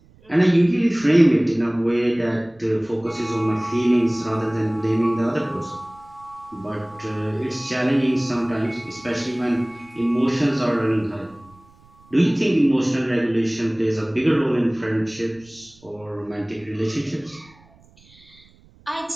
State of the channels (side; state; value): right; noise; rumble, 28 dB below the sound